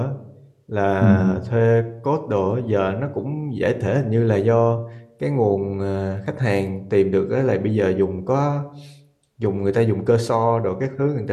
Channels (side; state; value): both; identical; correlation 1.00